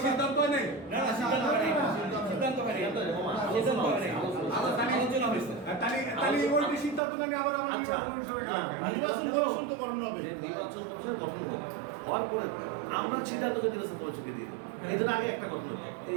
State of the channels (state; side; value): drops out; left; at 7.0 s